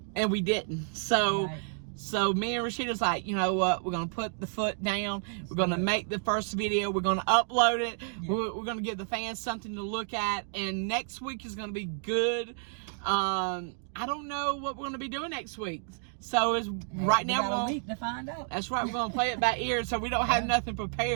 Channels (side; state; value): left; silent; 58 dB below the other